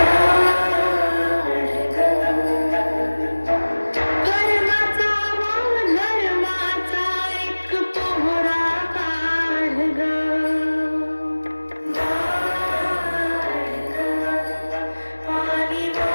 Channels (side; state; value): both; inverted; correlation -1.00